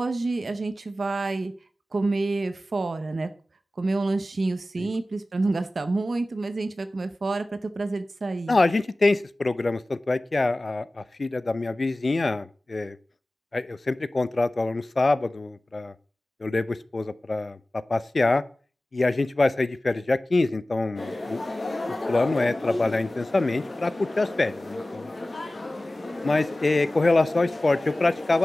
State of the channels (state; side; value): normal; both; correlation 0.97